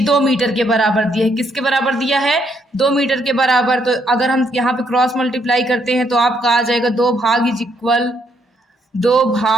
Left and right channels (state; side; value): normal; both; correlation 0.73